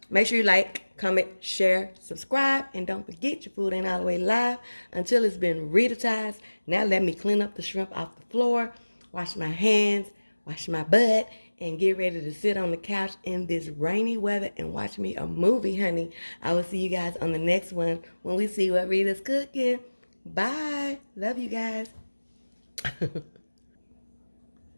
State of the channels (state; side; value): inverted; both; correlation -1.00